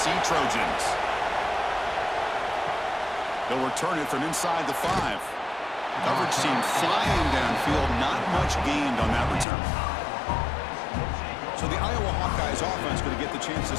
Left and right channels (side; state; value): right; drops out; at 9.5 s